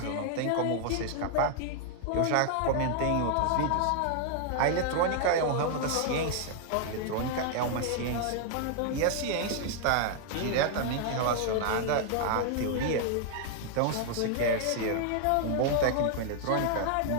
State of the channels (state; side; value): different; both; correlation 0.00